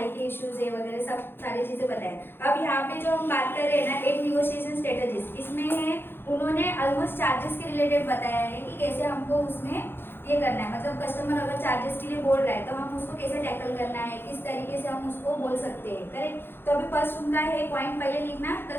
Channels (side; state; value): right; late; 0.10 ms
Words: के इश्यूज है वगैरह सब सारी चीजें बताएं। अब यहाँ पे जो हम बात कर रहे हैं ना 8 निगोशिएशन स्ट्रेटजीज, इसमें है उन्होंने ऑलमोस्ट चार्जेस के रिलेटेड बताया है कि कैसे हमको उसमें ये करना है। मतलब कस्टमर अगर चार्जेस के लिए बोल रहा है तो हम उसको कैसे टैकल करना है, किस तरीके से हम उसको बोल सकते हैं करेक्ट। तो अभी फर्स्ट उनका है पॉइंट पहले लिखना